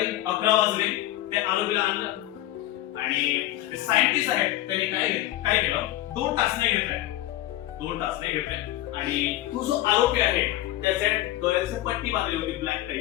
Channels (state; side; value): quieter; right; 15.2 dB